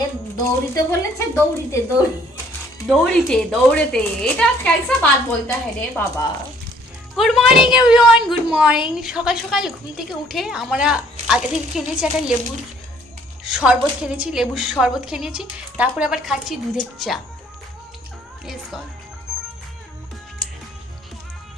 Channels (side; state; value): both; normal; correlation 0.60